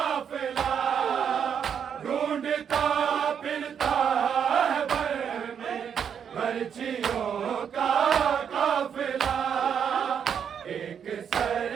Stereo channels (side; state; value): left; quieter; 7.8 dB